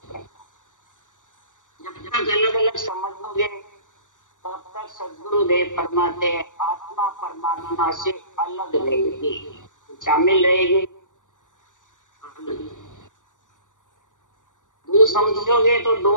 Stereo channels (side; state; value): right; late; 0.87 ms